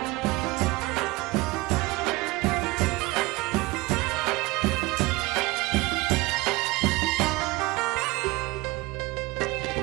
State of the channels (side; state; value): left; quieter; 21.3 dB